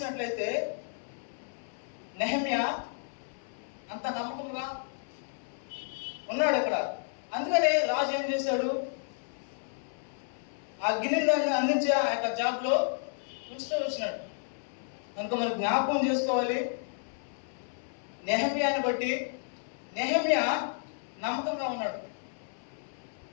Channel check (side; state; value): right; silent; 57 dB below the other